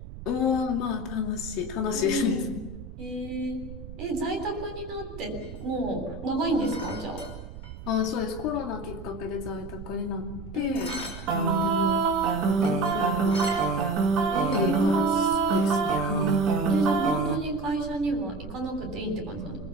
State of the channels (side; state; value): right; noise; rumble, 13 dB below the sound